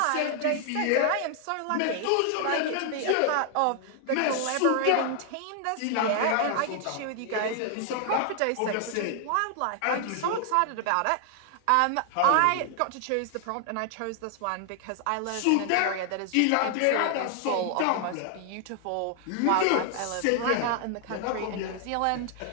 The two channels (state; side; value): different; both; correlation 0.00